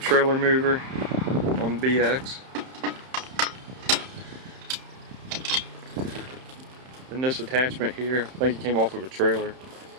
mover on the BX. And this attachment here, I think it came off of a trailer.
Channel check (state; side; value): late; left; 31 ms